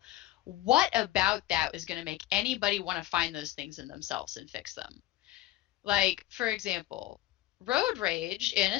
what about that is going to make anybody want to find those things in themselves and fix them? Like, for example, road rage, in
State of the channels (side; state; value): right; quieter; 15.5 dB